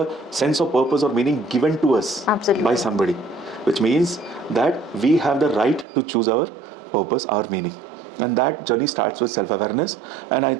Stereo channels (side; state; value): left; drops out; at 5.9 s